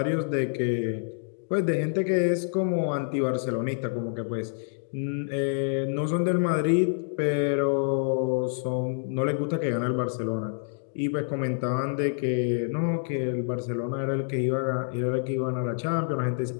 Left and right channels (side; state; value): right; silent; digital silence